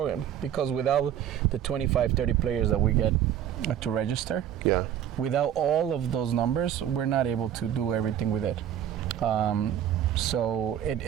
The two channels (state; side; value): quieter; left; 10.4 dB